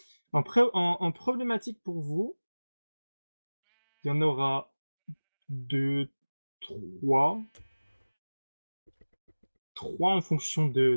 En problématique pour vous, il y en aura 2, 3. 3 en fonction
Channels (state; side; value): inverted; both; correlation -1.00